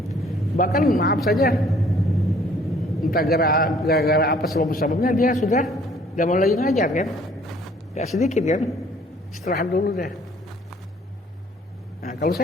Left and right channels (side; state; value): both; normal; correlation 0.58